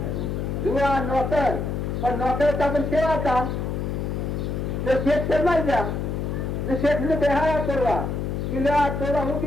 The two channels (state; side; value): noise; left; hum, 2 dB below the sound